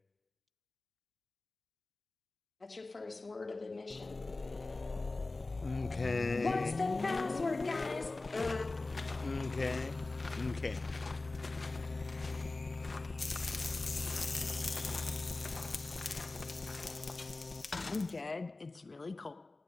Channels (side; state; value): right; quieter; 3.3 dB